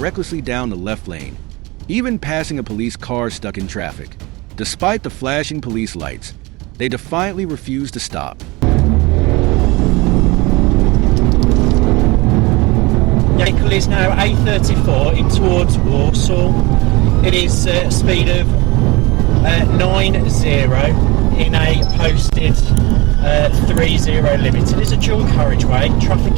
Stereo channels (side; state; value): left; quieter; 23.4 dB